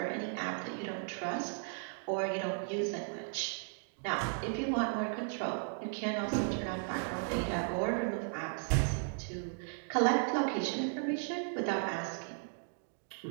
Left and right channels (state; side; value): silent; left; 54 dB below the other